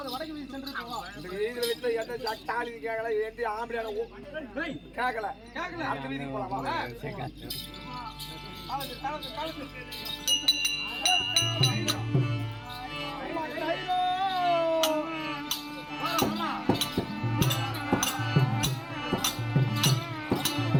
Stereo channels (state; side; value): identical; both; correlation 1.00